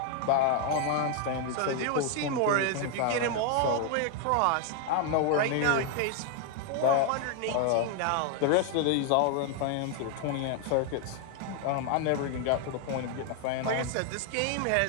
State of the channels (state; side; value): different; both; correlation 0.01